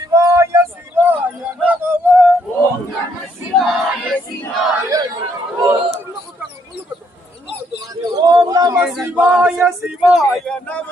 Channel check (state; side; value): normal; both; correlation 0.71